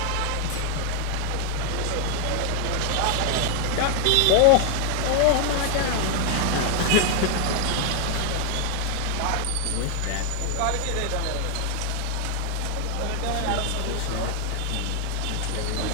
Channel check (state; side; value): different; both; correlation 0.00